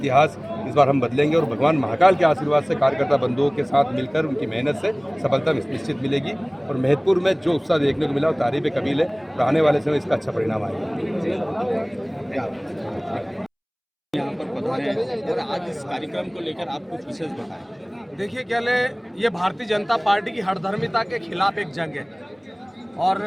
इस बार हम बदलेंगे और भगवान महाकाल के आशीर्वाद से कार्यकर्ता बंधुओं के साथ मिलकर उनकी मेहनत से सफलता निश्चित मिलेगी। और महतपुर में जो उत्साह देखने को मिला वो तारीफ कबील है और आने वाले समय इसका अच्छा परिणाम आएगा। यहाँ पर पधारे हैं और आज इस कार्यक्रम को लेकर आप कुछ विशेष बताएं। देखिए क्या ले, ये भारतीय जनता पार्टी की हठधर्मिता के खिलाफ एक जंग है और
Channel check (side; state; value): both; identical; correlation 1.00